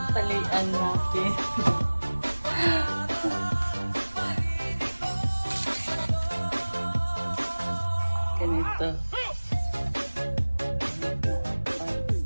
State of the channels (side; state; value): both; inverted; correlation -1.00